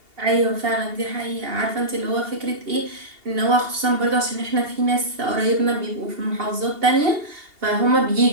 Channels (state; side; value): late; left; 2.8 ms